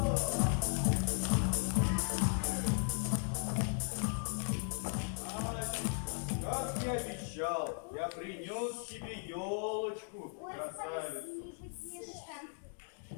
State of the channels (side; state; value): right; silent; 53 dB below the other